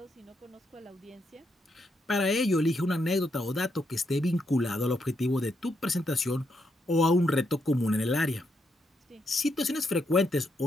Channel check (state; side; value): normal; both; correlation 0.79